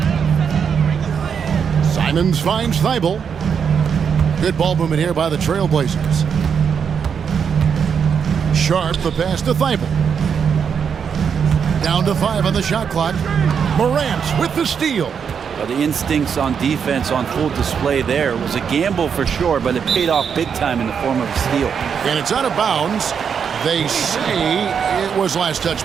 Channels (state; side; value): quieter; left; 7.0 dB